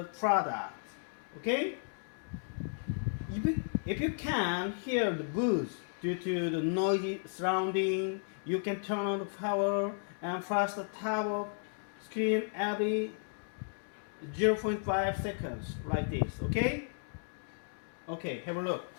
product. Okay? If you can't hear the booth due to the noisy surrounding, you can turn on the power and flash the top of screen every 0.5 seconds like this. Okay? Okay, have a look.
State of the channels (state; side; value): silent; right; digital silence